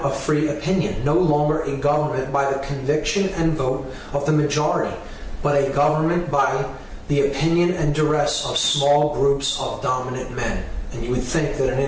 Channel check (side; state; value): both; identical; correlation 1.00